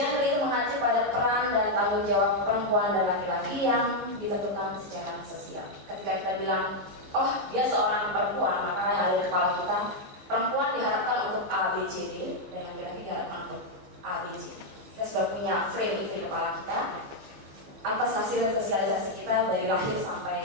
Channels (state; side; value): late; left; 14 ms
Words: itu mengacu pada peran dan tanggung jawab perempuan dan laki-laki yang ditentukan secara sosial. Ketika kita bilang, oh dia seorang perempuan, maka yang ada di kepala kita, perempuan diharapkan untuk A, B, C, D, dan laki-laki diharapkan untuk A, B, C. Kita sudah punya frame itu di kepala kita atas hasil sosialisasi kita dari lahir